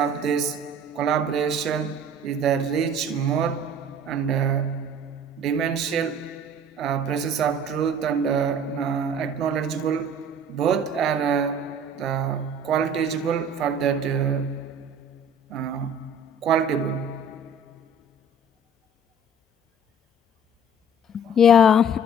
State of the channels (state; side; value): normal; both; correlation 0.48